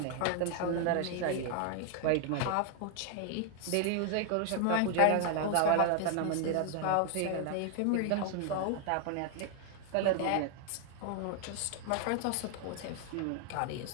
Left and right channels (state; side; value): different; both; correlation 0.00